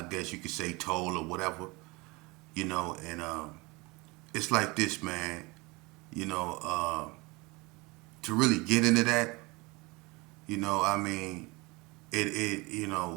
guess you could say toll or whatever, you know, and it's like this, man. You know, to really get into that, you know, I mean, you know,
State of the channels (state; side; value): quieter; left; 24.8 dB